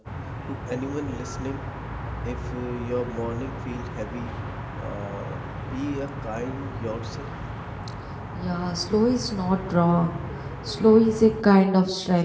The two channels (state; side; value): identical; both; correlation 1.00